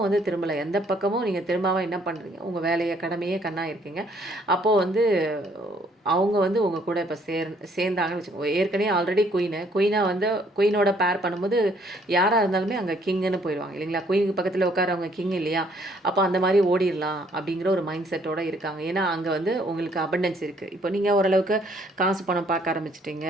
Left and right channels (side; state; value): both; normal; correlation 0.65